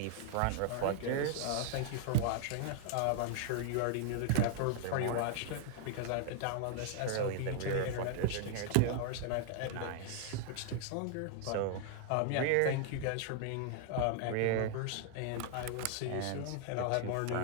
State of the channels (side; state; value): both; different; correlation -0.01